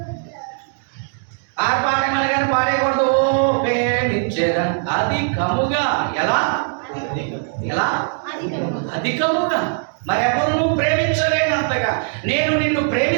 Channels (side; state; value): left; silent; 62 dB below the other